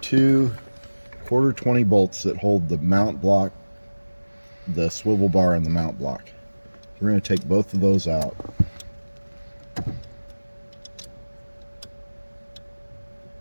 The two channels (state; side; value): inverted; both; correlation -1.00